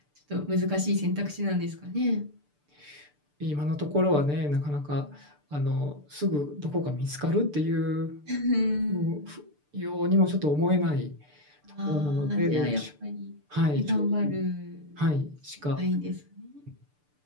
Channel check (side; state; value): left; late; 6.8 ms